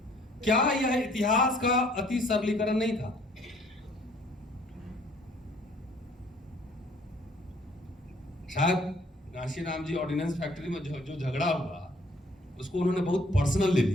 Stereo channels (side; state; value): both; normal; correlation 0.60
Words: क्या यह इतिहास का अति सरलीकरण नहीं था? शायद कांशीराम जी ऑर्डिनेंस फैक्ट्री में जो झगड़ा हुआ उसको उन्होंने बहुत पर्सनल ले